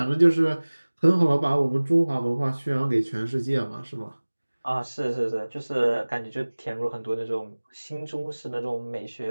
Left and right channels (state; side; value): inverted; both; correlation -1.00